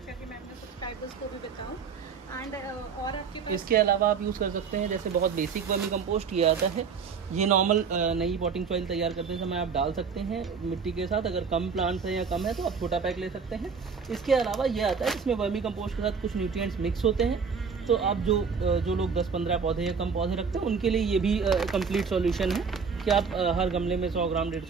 कि मैं अपने सब्सक्राइबर्स को भी बताऊँ। एंड और आपके पास इसके अलावा आप यूज़ कर सकते हैं जैसे बहुत बेसिक वर्मी कंपोस्ट ये आता है। ये नॉर्मल नई पॉटिंग सॉइल तैयार करते समय आप डाल सकते हैं मिट्टी के साथ। अगर कम प्लांट्स है या कम है तो आप छोटा पैक ले सकते हैं। इसके अलावा ये आता है इसमें वर्मी कंपोस्ट के साथ कुछ न्यूट्रिएंट्स मिक्स होते हैं। तो आप जो लोग 10-15 पौधे या कम पौधे रखते हैं उनके लिए ये भी कंप्लीट सॉल्यूशन है कि आप हर गमले में 100 ग्राम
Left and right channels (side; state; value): left; quieter; 5.7 dB